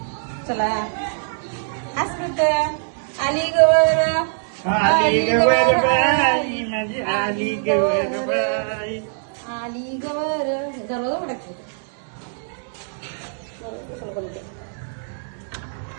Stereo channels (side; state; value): left; silent; digital silence